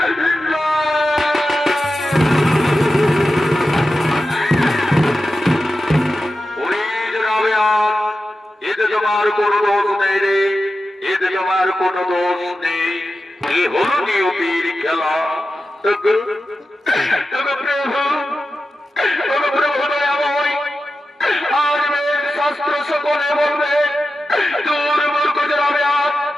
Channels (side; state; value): both; normal; correlation 0.92